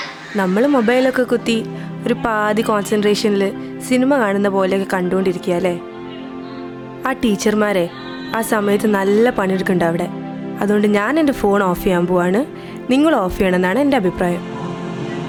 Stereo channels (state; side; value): identical; both; correlation 1.00